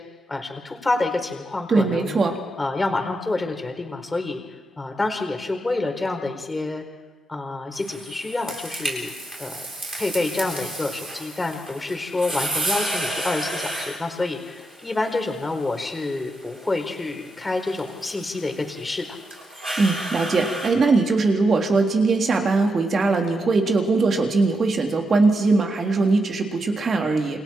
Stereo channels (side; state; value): both; normal; correlation 0.85